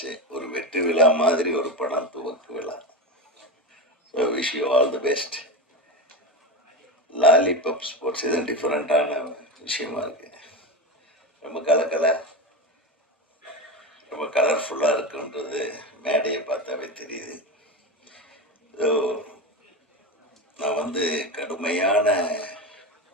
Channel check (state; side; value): normal; both; correlation 0.19